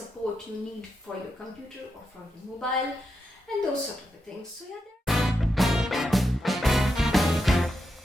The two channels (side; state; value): both; normal; correlation 0.85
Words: you need for your computer or for your mobile and those sort of things. So yeah.